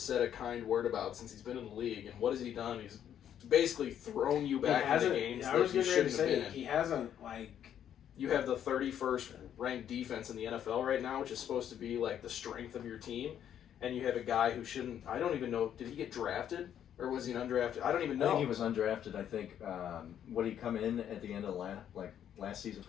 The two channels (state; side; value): quieter; right; 9.8 dB